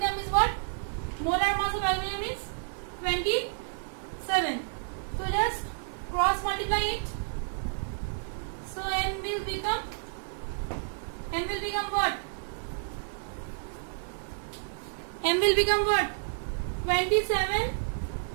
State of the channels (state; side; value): silent; left; 58 dB below the other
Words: is what? Molar mass of aluminum is 27. So just cross multiply it. So n will become what? M will become what? 27